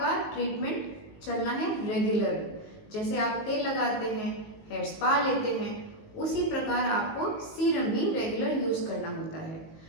ट्रीटमेंट चलना है रेगुलर। जैसे आप तेल लगाते हैं, हेयर स्पा लेते हैं, उसी प्रकार आपको सीरम भी रेगुलर यूज़ करना होता है।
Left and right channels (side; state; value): right; late; 19 ms